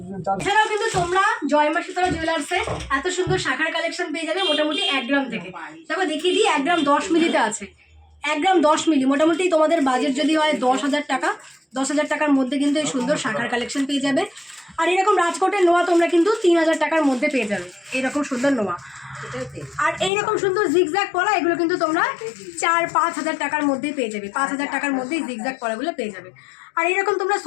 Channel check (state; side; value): drops out; right; at 20.1 s